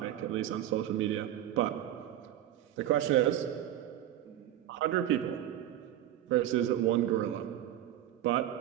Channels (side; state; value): left; quieter; 12.2 dB